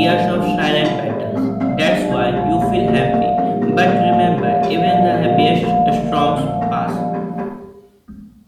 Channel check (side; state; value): both; identical; correlation 1.00